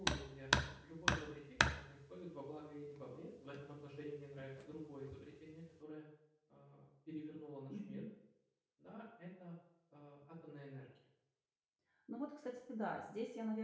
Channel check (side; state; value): both; identical; correlation 1.00